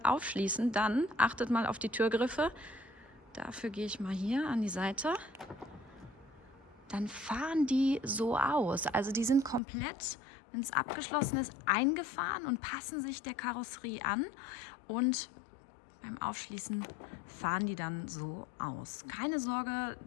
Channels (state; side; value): drops out; right; at 9.6 s